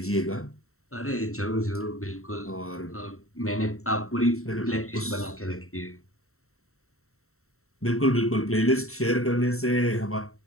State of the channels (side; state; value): right; late; 0.63 ms